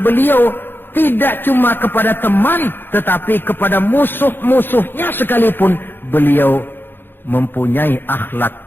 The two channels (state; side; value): late; right; 0.10 ms